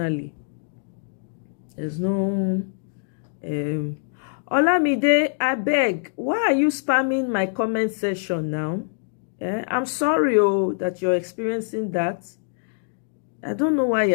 there's no... Olamide, I beg, why are you spamming my comment section now? I'm sorry that you're experiencing that. I don't know why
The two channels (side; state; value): right; silent; digital silence